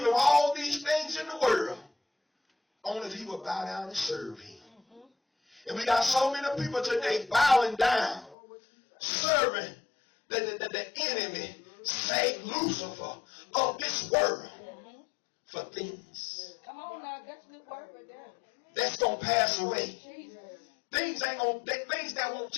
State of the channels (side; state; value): right; drops out; at 8.3 s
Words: all these things in the world. Only if he would bow down and serve him. And we got so many people today bowing down, serving the enemy, Satan, Lucifer, of this world for things. Come on now, that's a good word right there. That's going to pass away. Jesus. Things that won't